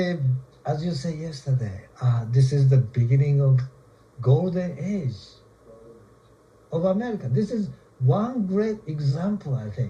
as you said yesterday, this is the beginning of golden age of America. This is one great example, I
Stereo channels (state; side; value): identical; both; correlation 1.00